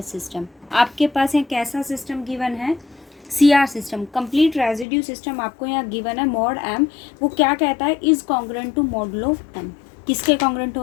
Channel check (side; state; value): right; drops out; at 4.9 s